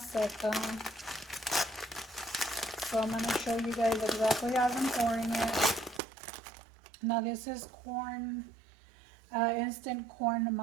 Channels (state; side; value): drops out; left; at 6.0 s